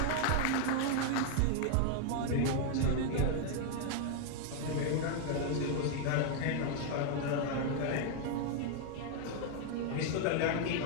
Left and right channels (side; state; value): both; different; correlation 0.00